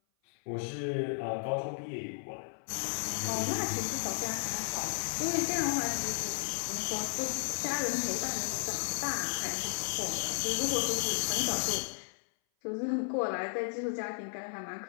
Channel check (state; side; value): silent; right; 55 dB below the other